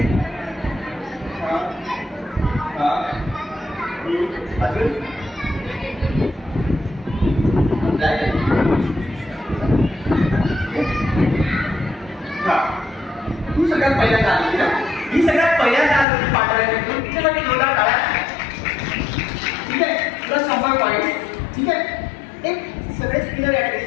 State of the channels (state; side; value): drops out; right; at 16.1 s